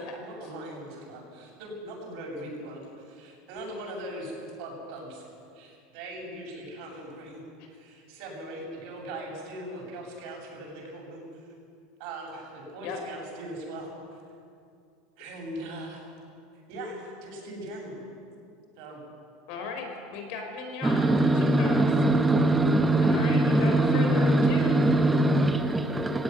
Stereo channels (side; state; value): both; normal; correlation 0.73